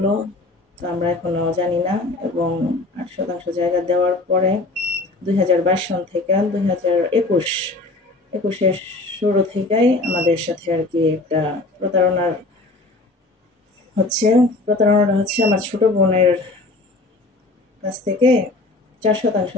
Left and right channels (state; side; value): quieter; right; 3.0 dB